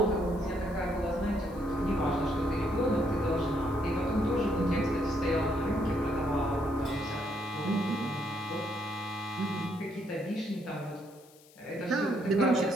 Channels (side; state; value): left; noise; hiss, 26 dB below the sound